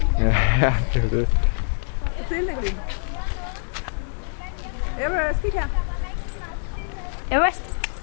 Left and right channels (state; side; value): silent; right; 62 dB below the other